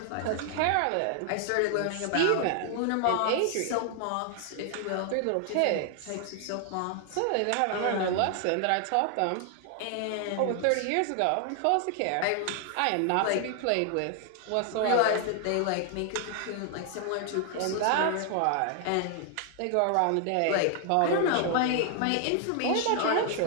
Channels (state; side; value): different; both; correlation 0.00